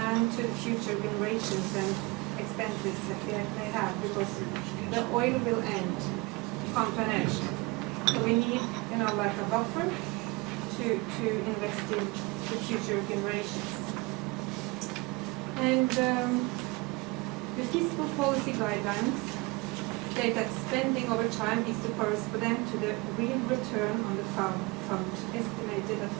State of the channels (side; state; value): left; quieter; 25.4 dB